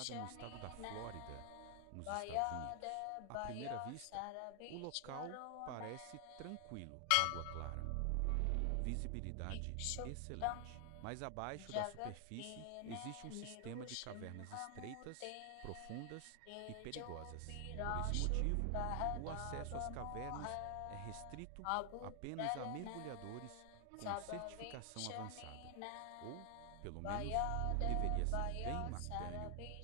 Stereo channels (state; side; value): different; both; correlation 0.00